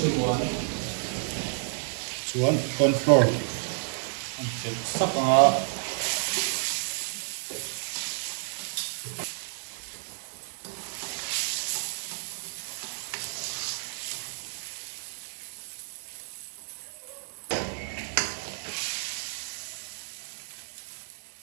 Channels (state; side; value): silent; left; digital silence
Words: chuan corn flour an tel sak a